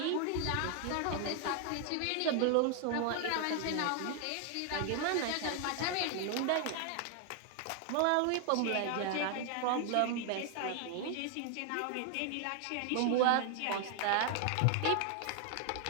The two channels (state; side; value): different; both; correlation 0.00